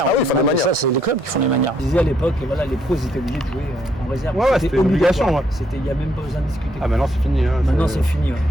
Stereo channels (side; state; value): both; normal; correlation 0.71